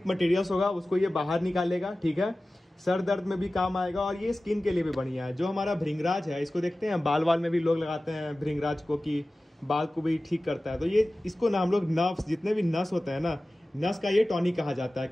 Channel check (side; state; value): both; normal; correlation 0.96